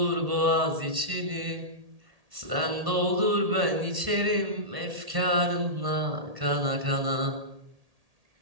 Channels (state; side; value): late; left; 1.8 ms